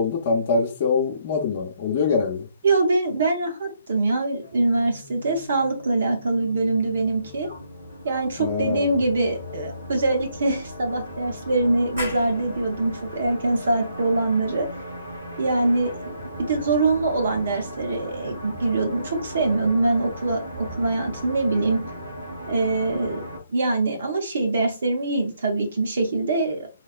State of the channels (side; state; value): both; inverted; correlation -0.75